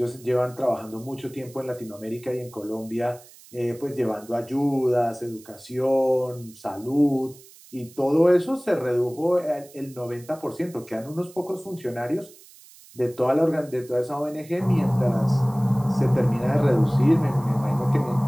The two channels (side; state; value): right; noise; hiss, 23 dB below the sound